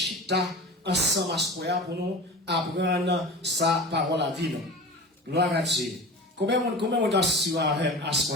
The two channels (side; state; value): both; normal; correlation 0.34